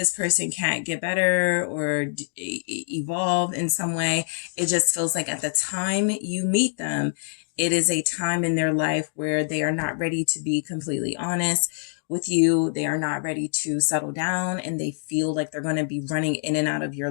person can't get better or evolve in some way. It just feels like at the time you meet them, it is a time in their life where they are not ready to be completely honest with you. They are not ready to settle down, and they feel like they're going to be running in and out of your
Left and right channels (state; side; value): silent; right; digital silence